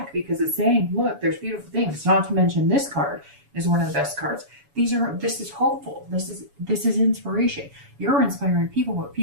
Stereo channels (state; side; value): late; left; 7.1 ms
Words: because it's saying, look, there's beautiful things. Not to mention this card is one of the best cards. This is hopeful. This is inspiration. You're inspiring people, but